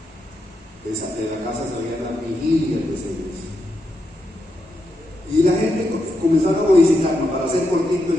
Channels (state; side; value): normal; both; correlation 0.83